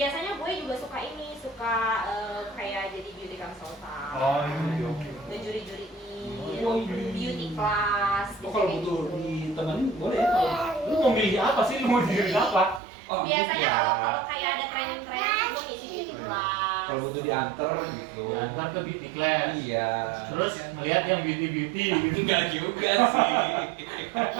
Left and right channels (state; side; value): drops out; left; at 12.8 s